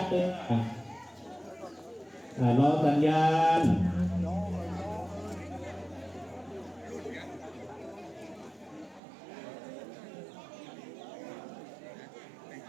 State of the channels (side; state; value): left; drops out; at 9.0 s